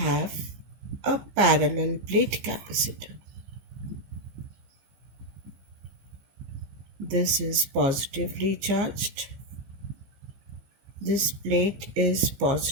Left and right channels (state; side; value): late; left; 15 ms